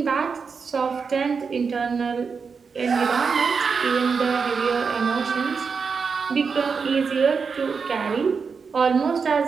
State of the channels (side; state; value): left; quieter; 5.4 dB